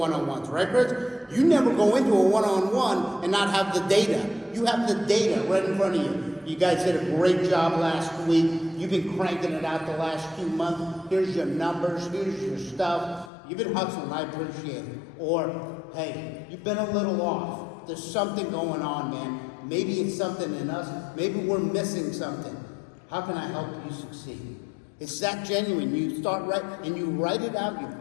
right, Chris? You never go into a one-on-one and not have the data. You have the data right in front of you. You guys did a great job last week. You've been cranking it out the last 2 months. Here's your numbers. Here's your stuff. You've been hustling. I appreciate it. Or, hey, you've been a little off. There's something going on, man. Maybe it's something in us. Maybe we're missing something. How can I help you succeed? It's that genuine. You start and you write it out, you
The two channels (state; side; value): drops out; right; at 13.3 s